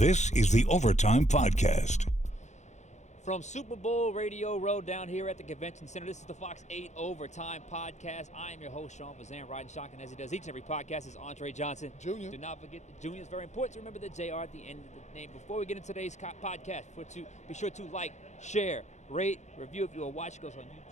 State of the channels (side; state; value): right; late; 0.34 ms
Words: is the Overtime Podcast. From Super Bowl Radio Row down here at the Convention Center, this is the Fox 8 Overtime Podcast. I am your host, Sean Fazende, riding shotgun as he does each and every podcast. Is Andre Johnson. Junior. Do not forget the Junior is very important to remember the JR at the end of the name. Before we get into today's podcast, be sure to like, share, rate, review. If you are watching us on